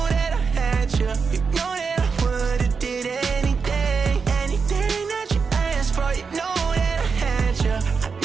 that I had you. You know that I would've did anything. Anything that you asked for. You know that I had you. I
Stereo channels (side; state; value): left; quieter; 5.3 dB